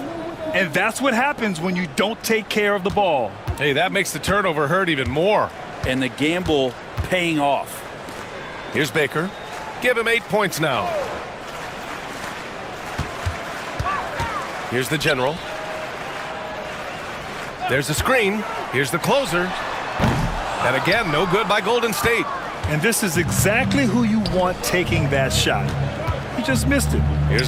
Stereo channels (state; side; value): identical; both; correlation 1.00